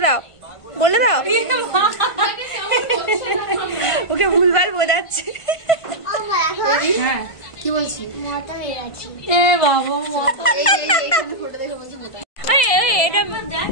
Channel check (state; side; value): late; right; 1.5 ms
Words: দাও, বলে দাও। ওকে ভুলভাল বোঝাচ্ছে। হ্যাঁ, কি বলছি? এ বাবা,